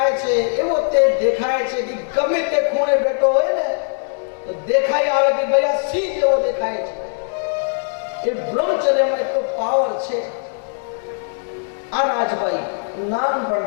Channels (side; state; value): right; silent; digital silence